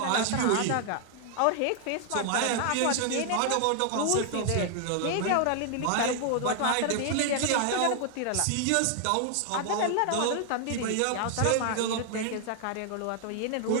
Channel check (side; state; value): both; different; correlation 0.00